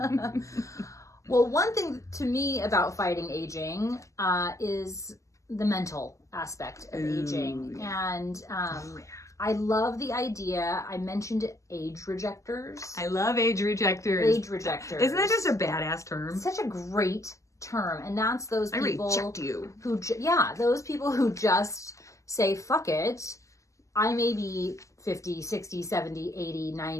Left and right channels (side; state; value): right; late; 0.16 ms